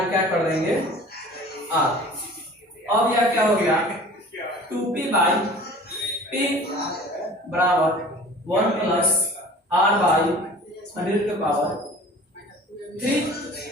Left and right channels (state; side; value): normal; both; correlation 0.44